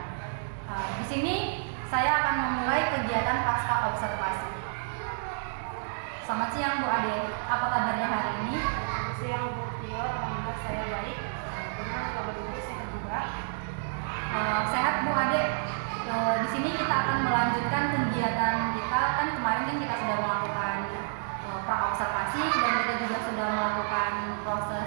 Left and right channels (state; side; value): silent; left; 58 dB below the other